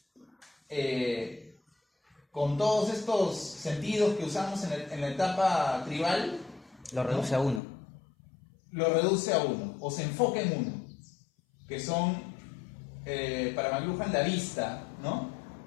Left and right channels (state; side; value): drops out; right; at 7.6 s